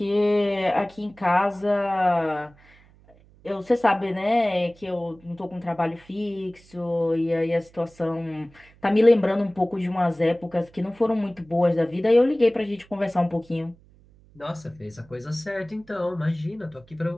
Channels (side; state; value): right; noise; hum, 28 dB below the sound